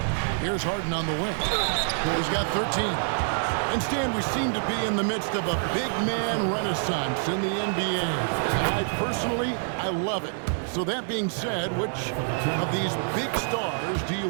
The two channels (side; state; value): left; silent; 60 dB below the other